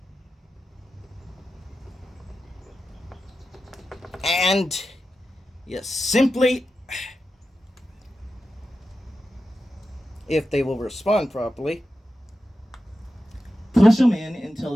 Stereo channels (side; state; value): both; normal; correlation 0.92